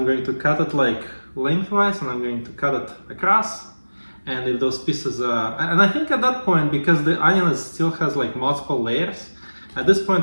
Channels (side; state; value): both; inverted; correlation -1.00